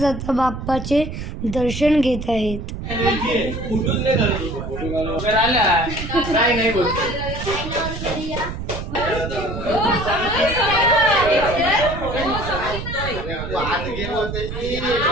बाप्पाचे दर्शन घेत आहेत.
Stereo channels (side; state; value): right; noise; rumble, 7 dB below the sound